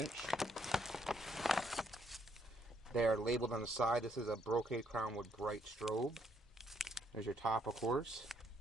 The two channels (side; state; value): both; normal; correlation 0.70